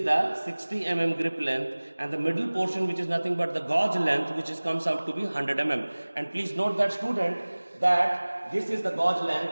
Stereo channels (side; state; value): both; inverted; correlation -1.00